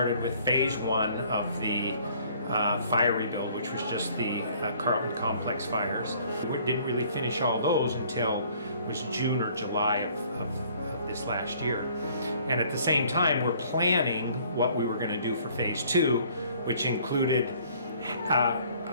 with phase one of the fire rebuild, which was just the Carlton Complex fires. We didn't really finish all those until it was June or July of this last year. And at the same time, we're planning what we were going to do for phase two, which included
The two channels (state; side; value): inverted; both; correlation -0.58